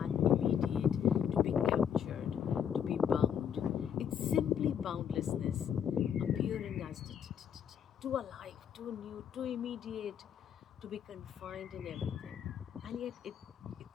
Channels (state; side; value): quieter; right; 8.5 dB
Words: immediate to be captured, to be bound. It's simply boundlessness appearing as too alive, too new, too immediate to be confined in everything. And yet it